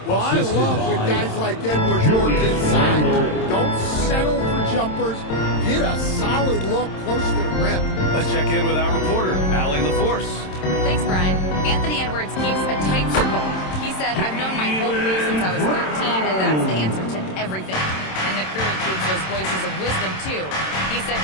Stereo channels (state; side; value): late; right; 27 ms